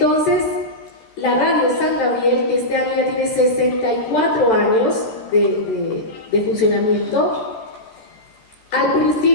la Radio San Gabriel, que este año ya tiene 64 años de funcionamiento, al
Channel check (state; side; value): late; right; 14 ms